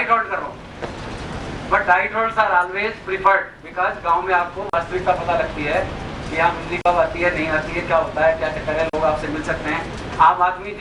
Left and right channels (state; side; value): identical; both; correlation 1.00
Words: हॉल्ट कर रहा हूँ। But night halts are always preferred, because गांव में आपको वास्तविकता पता लगती है कि यहाँ बिजली कब आती है, नहीं आती है, क्या होता है, क्या चक्कर है, लोग आपसे मिल सकते हैं। आम आदमी